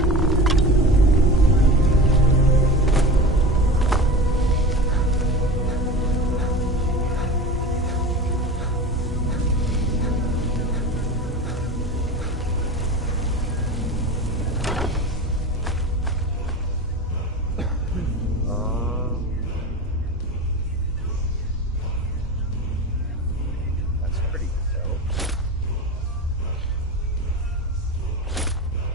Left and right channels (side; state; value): both; normal; correlation 0.30